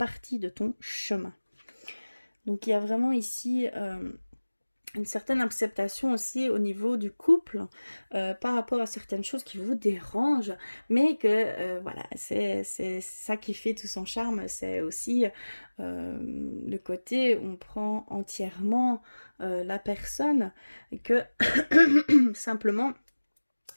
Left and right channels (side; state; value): both; inverted; correlation -1.00